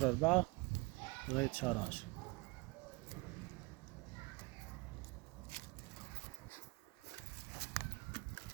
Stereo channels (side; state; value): left; quieter; 25.3 dB